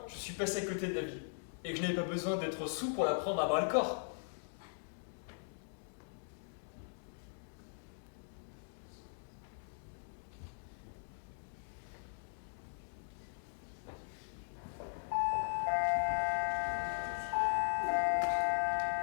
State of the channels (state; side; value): silent; right; digital silence